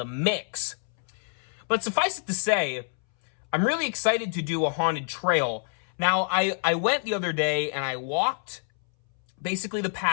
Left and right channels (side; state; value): right; silent; 60 dB below the other